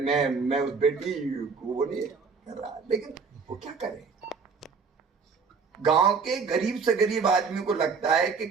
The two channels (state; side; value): quieter; left; 5.2 dB